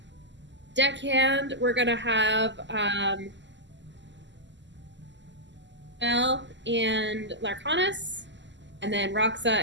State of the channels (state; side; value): late; left; 0.53 ms